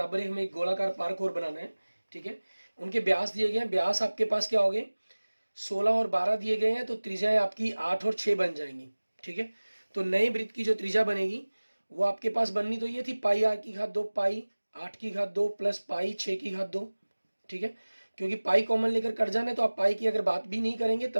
ही हमें एक गोलाकार पार्क और बनाना है, ठीक है। उनके ब्यास दिए गए हैं, ब्यास आपके पास क्या हो गए, 16 और 12 दिए गए हैं, तो त्रिज्याएं आपकी 8 और 6 बन जाएंगी, ठीक है। तो नए वृत्त की जो त्रिज्या बनेगी वो आपके पास बननी तो ये थी पाई आर की घात 2, पाई 8 की घात 2 प्लस पाई 6 की घात 2, ठीक है, क्योंकि पाई कॉमन लेकर कट जाना है, तो आप पाई की अगर बात भी नहीं करेंगे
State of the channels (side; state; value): both; inverted; correlation -1.00